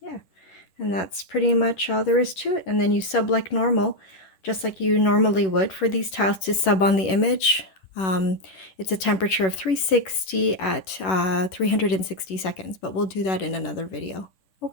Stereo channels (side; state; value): right; late; 11 ms